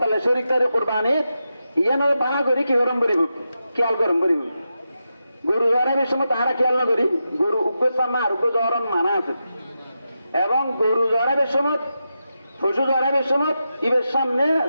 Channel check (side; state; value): both; inverted; correlation -0.88